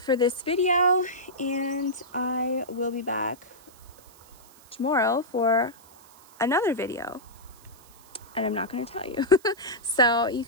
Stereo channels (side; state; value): right; noise; hiss, 25 dB below the sound